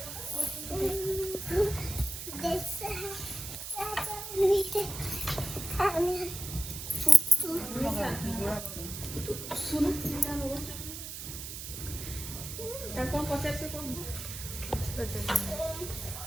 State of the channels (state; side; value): noise; right; hiss, 8 dB below the sound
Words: ଶୁଣୁ ତାକୁ କଣ ପଚାରୁଛୁ କଣ